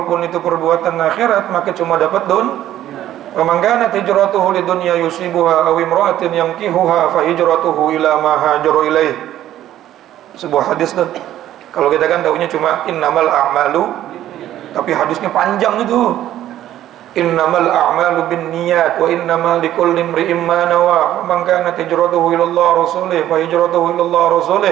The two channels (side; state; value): left; quieter; 12.6 dB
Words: itu perbuatan akhirat, maka cuma dapat wa man kanat hijratuhu lidunya yusibuha aw imra'atin yankihuha fa hijratuhu ila ma hajara ilaih. Sebuah hadis tuh. Kalau kita kan taunya cuma innamal a'malu, tapi hadisnya panjang itu. Innamal a'malu binniyat wa innamal likulli imri'in ma nawa. Man kanat hijratuhu ila Allah rasulih fa hijratuhu ila Allah